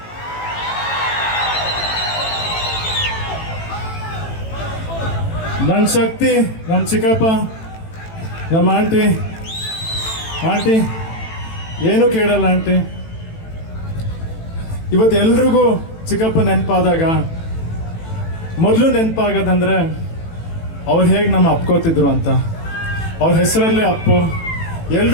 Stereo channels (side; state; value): right; late; 18 ms